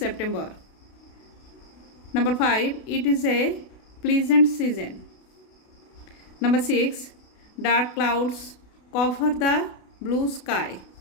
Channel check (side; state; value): right; late; 32 ms